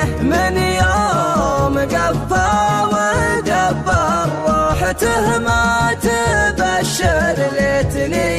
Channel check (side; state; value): both; identical; correlation 1.00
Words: من يوم قفى ودبر روحته ما تبشر